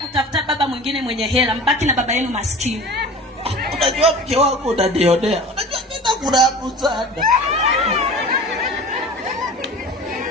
Utafuta baba mwingine mwenye hela, mbaki na baba yenu maskini. Unajua mke wako unadionea. Unajua nenda kurabu sana.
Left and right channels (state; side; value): normal; both; correlation 0.38